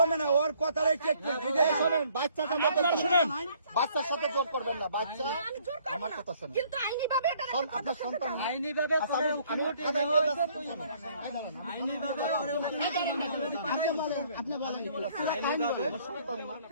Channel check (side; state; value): both; inverted; correlation -0.62